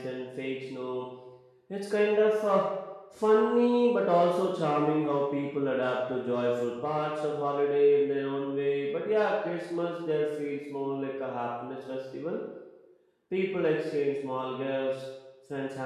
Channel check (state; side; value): identical; both; correlation 1.00